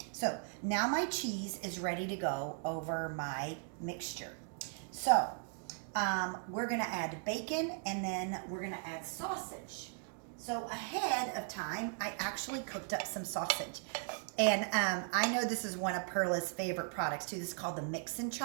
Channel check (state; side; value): silent; left; 53 dB below the other